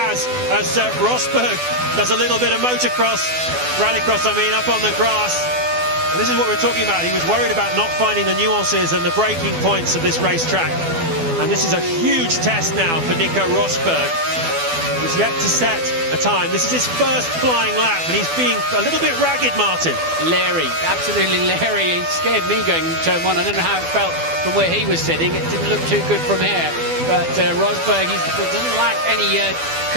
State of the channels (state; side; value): late; left; 12 ms